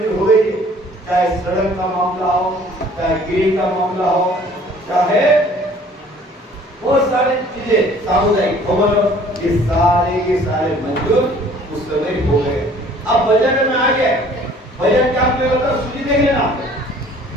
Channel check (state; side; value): normal; both; correlation 0.54